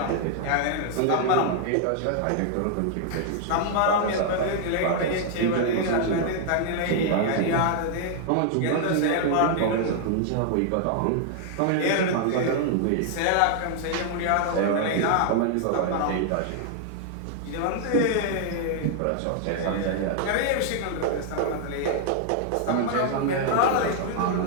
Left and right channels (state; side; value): different; both; correlation 0.00